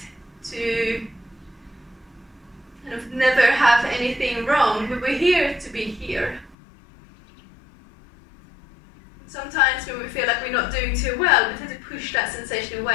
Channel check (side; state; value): right; drops out; at 6.6 s